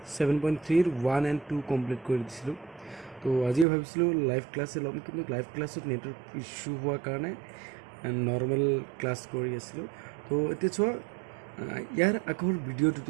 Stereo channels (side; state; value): left; drops out; at 3.7 s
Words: 7.3 1 and 2 কমপ্লিট কৰি দিছিলোঁ তো আজিও ভাবিছিলোঁ লাইভ ক্লাছে ল'ম কিন্তু লাইভ ক্লাছত নেটৱৰ্ক ইছ্যু হোৱাৰ কাৰণে নৰ্মেল ক্লাছ কৰি আছিলোঁ তো এতিয়া চোৱা ইয়াৰ আগৰ